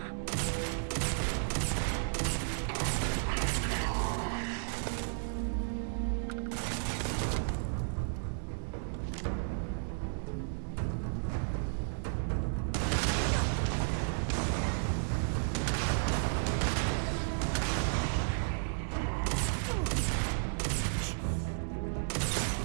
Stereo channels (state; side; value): silent; left; digital silence